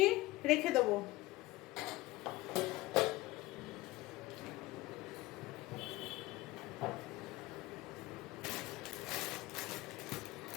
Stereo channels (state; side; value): quieter; right; 18.9 dB